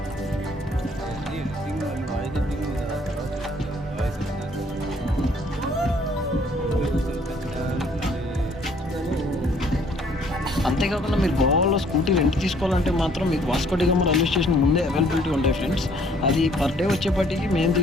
అంతేకాకుండా మీరు గోవాలో స్కూటీ రెంట్ తీసుకోవాలంటే మాత్రం మీకు వాస్కో డి గామా రైల్వే స్టేషన్ ముందే అవైలబిలిటీ ఉంటాయి ఫ్రెండ్స్. అది పర్ డే వచ్చేపటికి మేము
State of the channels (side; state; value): both; normal; correlation 0.61